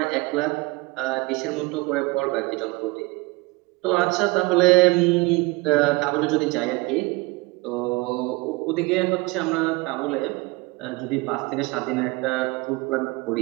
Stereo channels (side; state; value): left; quieter; 23.6 dB